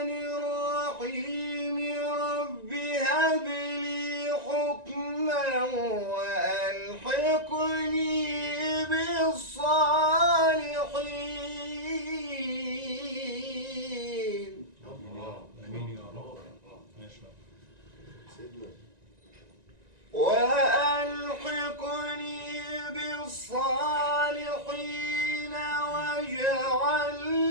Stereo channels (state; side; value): late; left; 1.9 ms